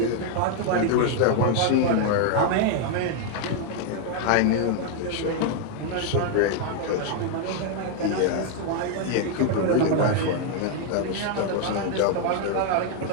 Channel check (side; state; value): both; different; correlation 0.00